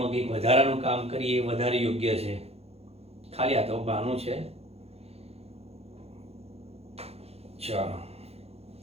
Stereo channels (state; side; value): late; left; 0.29 ms